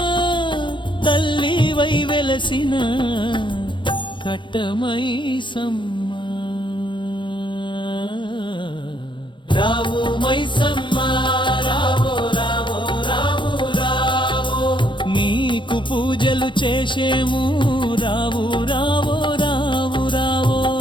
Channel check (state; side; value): late; right; 0.23 ms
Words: తల్లివై వెలసిన కట్టమైసమ్మ రావు మైసమ్మ రావో రావో రావు రావో నీకు పూజలు చేసేము రావు రావో రావు రావో